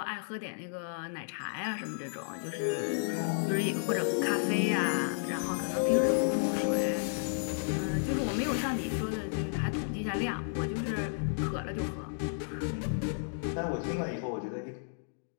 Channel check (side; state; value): right; silent; digital silence